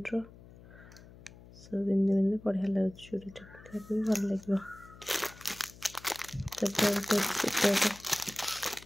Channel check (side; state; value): left; noise; hum, 20 dB below the sound